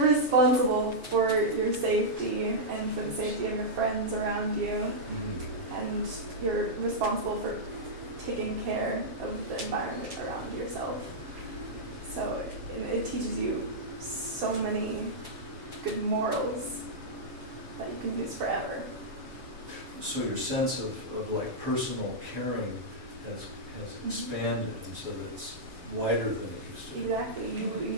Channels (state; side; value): late; left; 7.2 ms